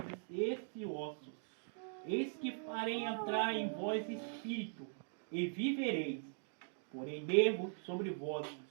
esse osso: Eis que farei entrar em vós espírito, e vivereis. Porém nervos sobre vós,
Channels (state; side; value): silent; left; digital silence